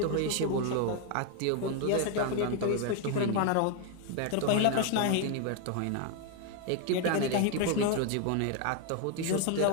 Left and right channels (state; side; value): different; both; correlation 0.00